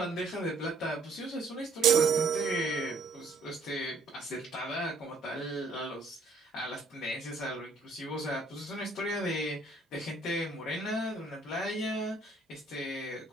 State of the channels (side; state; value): left; quieter; 3.2 dB